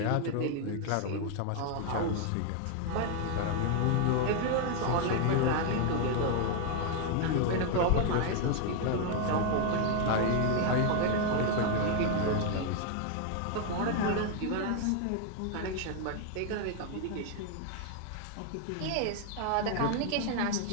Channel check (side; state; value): both; different; correlation 0.00